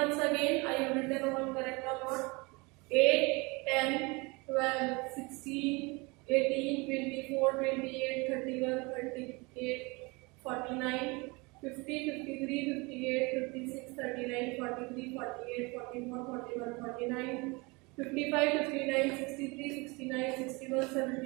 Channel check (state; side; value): quieter; left; 26.6 dB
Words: again. I have written all correct or not. 8, 10, 12, 16, 18, 24, 28, 31, 38, 49, 50, 53, 58, 56, 39, 43, 48, 44, 41, 49, 55, 59, 63, 69, 61,